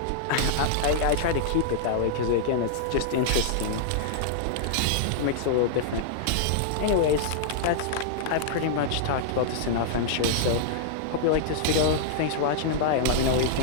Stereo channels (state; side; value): different; both; correlation -0.01